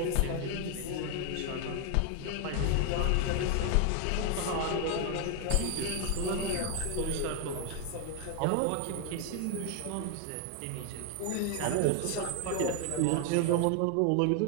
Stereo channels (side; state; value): both; different; correlation 0.01